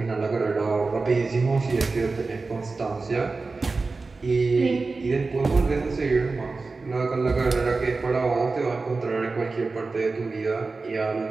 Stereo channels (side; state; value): left; quieter; 3.9 dB